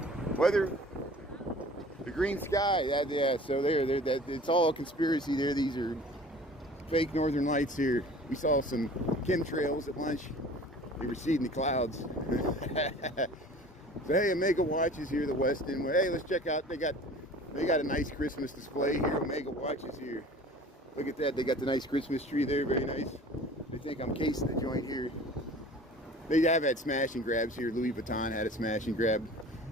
Weather, the green sky. Yeah, so it's all a conspiracy there. These are fake northern lights here. We saw some chemtrails at lunch. They were seeding the clouds. So hey, Omega Watches here, the Westin. Hey, let's check out. They got a nice Christmas display here. Omega Watches here. Look at that. They got the nice Christmas tree there. Very nice. They think I'm casing the joint here. They have had smash and grabs here. Louis Vuitton had a smash and grab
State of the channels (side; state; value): both; normal; correlation 0.45